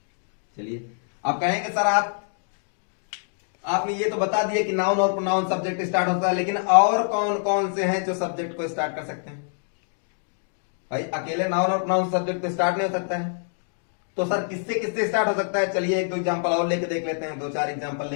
चलिए आप कहेंगे सर आपने ये तो बता दिया कि नाउन और प्रोनाउन सब्जेक्ट स्टार्ट होता है, लेकिन और कौन कौन से हैं जो सब्जेक्ट को स्टार्ट कर सकते हैं? भाई अकेले नाउन और प्रोनाउन सब्जेक्ट को स्टार्ट नहीं हो सकता है, तो सर किससे किससे स्टार्ट हो सकता है? चलिए 1-2 एग्जांपल और लेके देख लेते हैं। 2-4 एग्जांपल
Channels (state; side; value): silent; right; digital silence